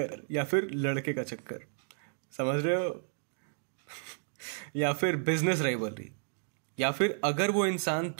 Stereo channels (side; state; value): left; silent; digital silence